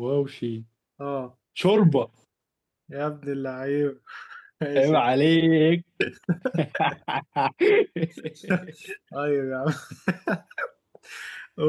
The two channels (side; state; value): both; identical; correlation 1.00